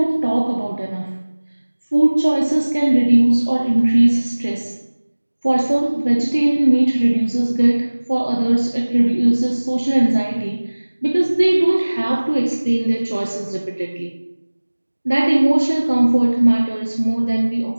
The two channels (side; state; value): both; inverted; correlation -1.00